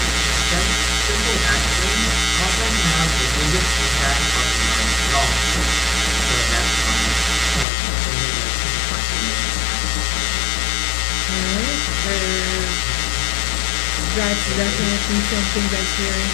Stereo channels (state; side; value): drops out; right; at 7.7 s